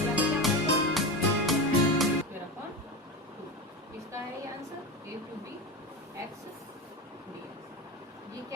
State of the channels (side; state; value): both; normal; correlation 0.21